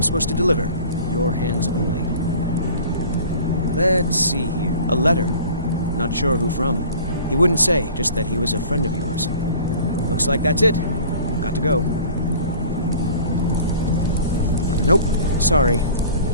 supposed to deliver. Your hands only. Let's see here. A letter. Not sure who from. He wouldn't say, just that he was a friend of yours. Looks like that's it. Got to go. Nope. Sorry.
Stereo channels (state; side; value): inverted; both; correlation -0.45